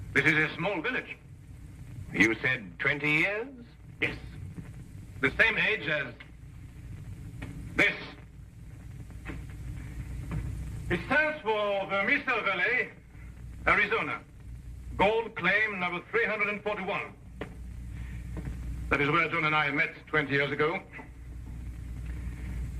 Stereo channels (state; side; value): identical; both; correlation 1.00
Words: This is a small village. You said 20 years? Yes. The same age as this. It stands for Vermissa Valley, Arizona. Gold claim number 341. That is where John and I met 20 years ago.